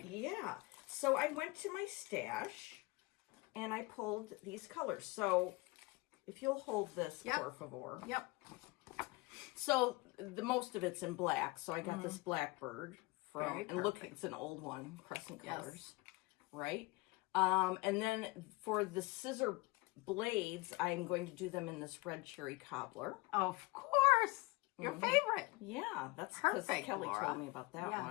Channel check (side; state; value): right; quieter; 22.9 dB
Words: Yeah. So I went to my stash and I pulled these colors. So if you'll hold this, por favor. Yep. So the most of it's in black. So I got this Blackbird from, and look, it's an old one, Crescent Colors, right? And then for the scissor blades, I'm going to do them in this red cherry cobbler. Of course, your favorite. Yeah, that's because Kelly Laura. told me about that